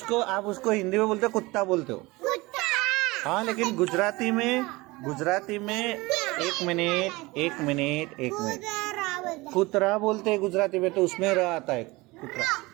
उसको हिंदी में बोलते हो, कुत्ता बोलते हो। हाँ, लेकिन गुजराती में एक मिनट कुतरा बोलते हैं गुजराती में, तो उसमें र आता है कुतरा।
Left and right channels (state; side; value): quieter; left; 22.4 dB